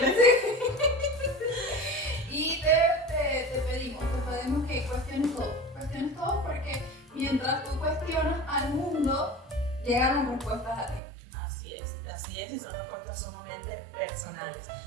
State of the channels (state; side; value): drops out; left; at 11.0 s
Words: Y te pedimos que cuestiones todo porque mientras tú cuestionas al mundo, llegan las respuestas a ti. Así es, y son respuestas sumamente personales.